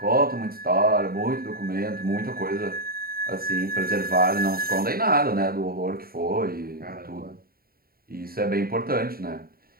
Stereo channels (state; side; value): late; left; 0.43 ms